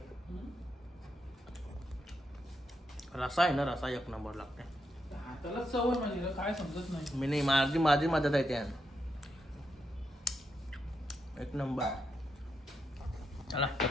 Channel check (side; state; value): both; normal; correlation 0.83